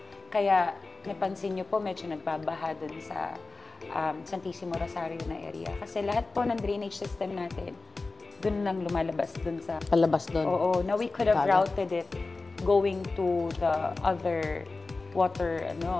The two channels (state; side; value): quieter; right; 3.6 dB